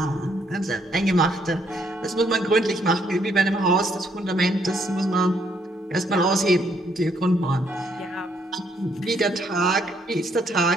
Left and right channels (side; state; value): both; normal; correlation 0.70